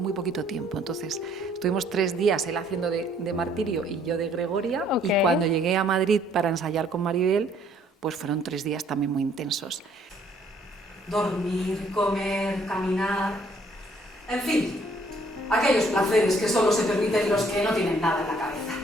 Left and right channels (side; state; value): both; normal; correlation 0.63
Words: poquito tiempo. Entonces estuvimos 3 días, él haciendo de Martirio y yo de Gregoria, y cuando llegué a Madrid para ensayar con Maribel, pues fueron 3 días también muy intensos. Dormir, comer, caminar, en fin, aquellos placeres que solo se permiten los que no tienen nada en la cabeza.